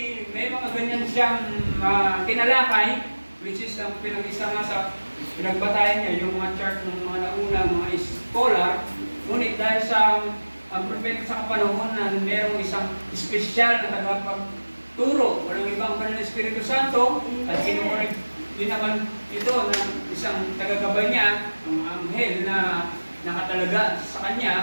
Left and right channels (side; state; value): both; inverted; correlation -1.00